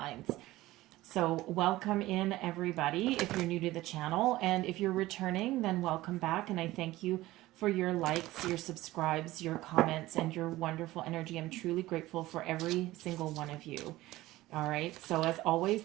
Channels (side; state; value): left; quieter; 17.3 dB